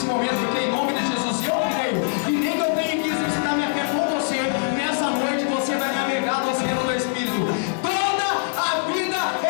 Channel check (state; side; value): silent; right; digital silence